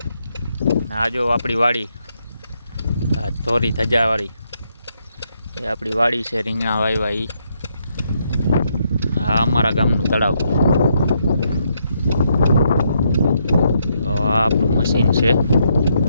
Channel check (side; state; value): both; inverted; correlation -0.76